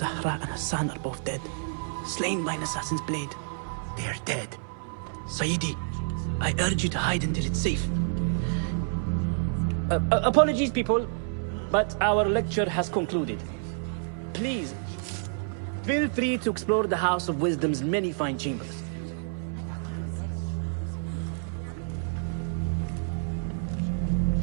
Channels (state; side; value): silent; left; 57 dB below the other